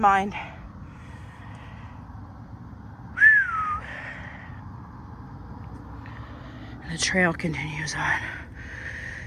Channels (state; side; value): identical; both; correlation 1.00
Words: mind. And the trail continues on